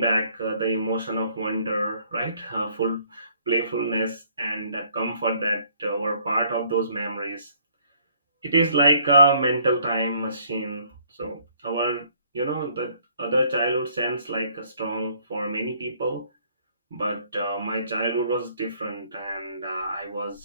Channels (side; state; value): both; inverted; correlation -0.62